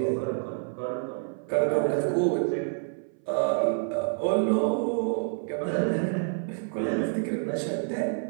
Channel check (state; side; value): silent; left; 57 dB below the other